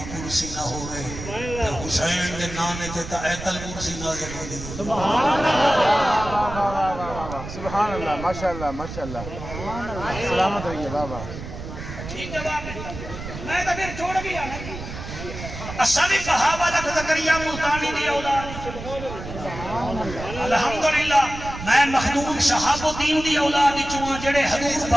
کرسی نہ ہوئے حسین دے نانے تے تا ایتل کرسی نازل ہوندی ہے سبحان اللہ سبحان اللہ ماشاءاللہ ماشاءاللہ سلامت رہیے بابا ٹھیک جواب ہے میں تو پھر چھوڑ گیا اصلی صحابہ لکھ زکریہ ملتانی دی اولاد الحمدللہ میں مخدوم شہاب الدین دی اولاد چواں جڑے حضور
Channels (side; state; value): right; noise; rumble, 10 dB below the sound